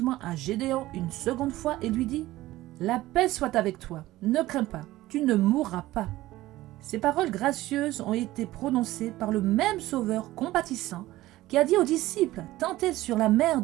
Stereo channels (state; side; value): quieter; left; 16.6 dB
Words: à Gédéon une seconde fois et lui dit La paix soit avec toi, ne crains pas, tu ne mourras pas. » Ces paroles gracieuses ont été prononcées par le même Sauveur compatissant qui a dit aux disciples tentés sur la mer